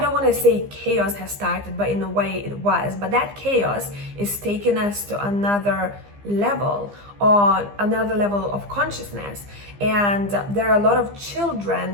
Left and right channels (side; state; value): left; late; 15 ms